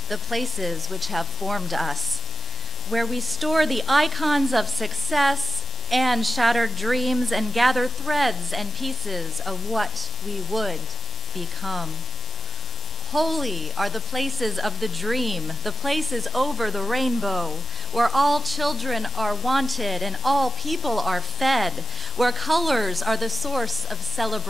the places which have formed us, where we store the icons of success and shattered dreams and gather threads and pieces of what we would become. Holy are the places of the dream, the places over the rainbow, where all children are wanted and all people are fed, where colors are the source of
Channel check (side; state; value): both; normal; correlation 0.98